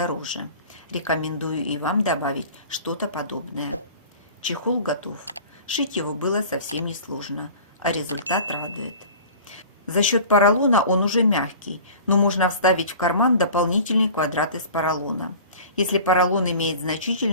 Рекомендую и вам добавить что-то подобное. Чехол готов. Шить его было совсем несложно, а результат радует. За счет поролона он уже мягкий, но можно вставить в карман дополнительный квадрат из поролона. Если поролон имеет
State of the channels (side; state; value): both; inverted; correlation -0.42